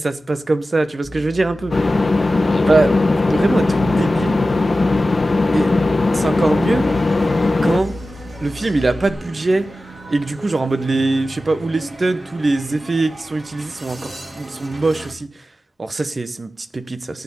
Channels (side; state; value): both; normal; correlation 0.94